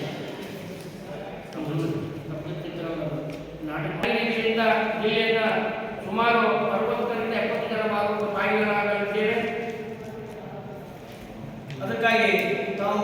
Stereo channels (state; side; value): identical; both; correlation 1.00